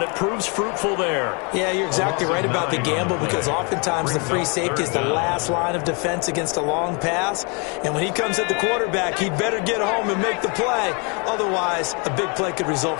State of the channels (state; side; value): quieter; right; 33.6 dB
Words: it proves fruitful there. Yeah, you're exactly right about the gamble, because oftentimes the free safety is the last line of defense against a long pass. And when he comes at the quarterback, he'd better get home and make the play. Otherwise, a big play could result